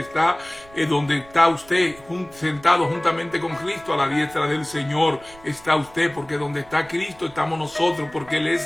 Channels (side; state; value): right; noise; rumble, 24 dB below the sound